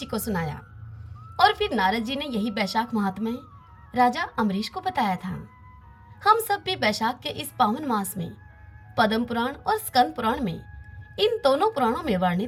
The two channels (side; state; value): both; identical; correlation 1.00